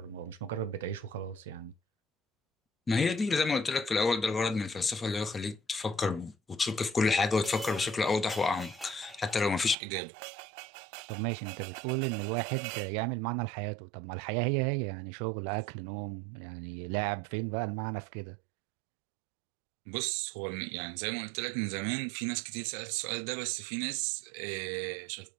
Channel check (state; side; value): drops out; left; at 9.8 s